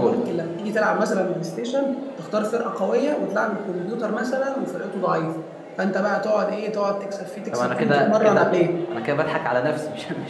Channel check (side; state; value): both; identical; correlation 1.00